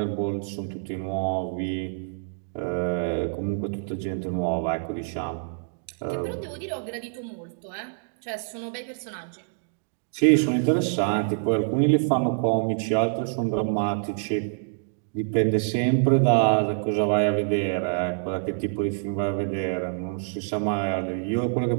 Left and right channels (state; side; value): silent; left; digital silence